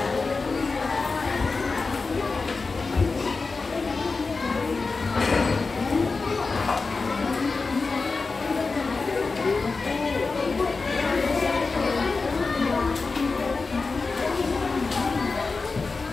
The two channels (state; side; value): quieter; right; 4.1 dB